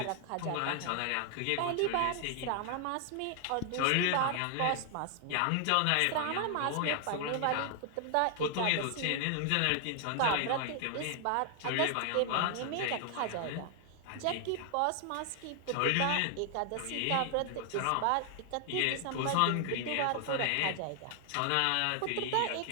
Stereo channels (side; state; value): both; different; correlation 0.00